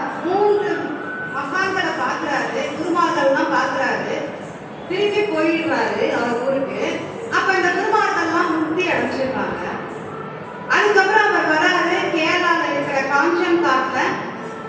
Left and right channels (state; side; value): identical; both; correlation 1.00